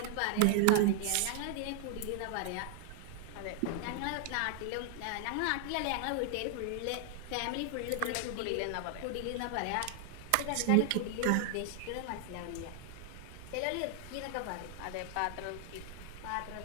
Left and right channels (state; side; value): different; both; correlation 0.00